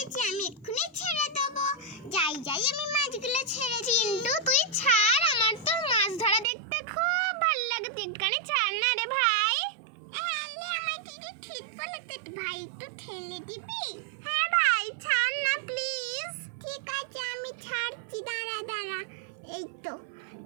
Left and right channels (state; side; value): drops out; left; at 6.5 s